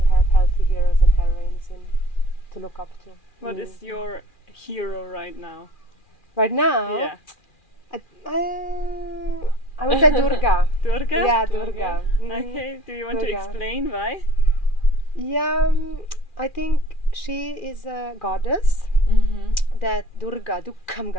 have healthy heroes and heroines to look up to. What is your hero right now? Right now? Yeah. I would say Durga. Durga? Yeah, Durga. Okay, do you want to Durga. explain why? Yeah, I think she is a goddess. That Durga, Dukkham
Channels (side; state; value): right; late; 2.4 ms